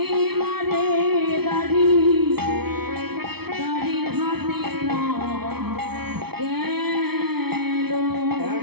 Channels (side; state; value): left; late; 0.96 ms